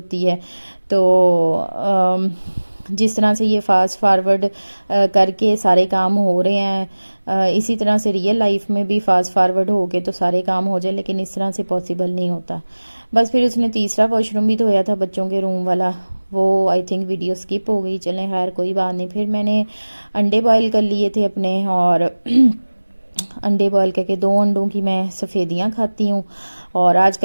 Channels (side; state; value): both; inverted; correlation -1.00